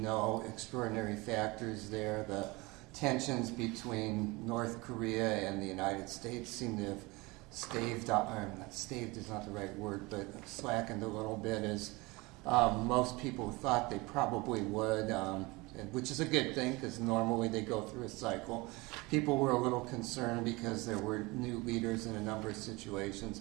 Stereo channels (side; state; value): left; quieter; 24.0 dB